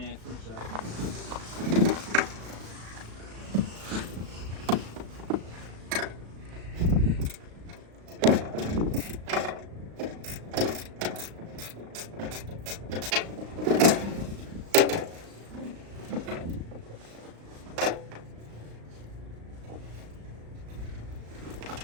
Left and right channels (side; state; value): left; late; 36 ms